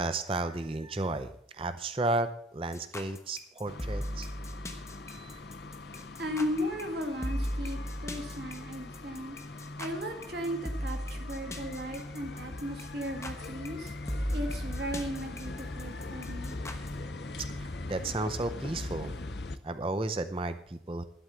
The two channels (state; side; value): normal; both; correlation 0.61